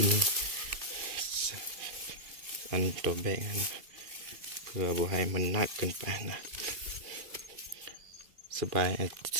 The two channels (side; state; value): left; late; 2.4 ms